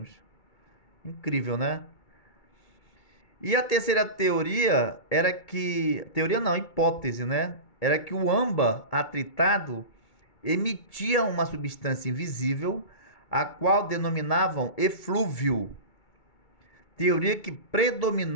Incrível, né? E a terceira teoria era que... Teoria não, hipótese, né? Era que o âmbar atritado emitia uma substância invisível, a qual denominavam eflúvio, teoria que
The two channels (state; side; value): late; right; 2.3 ms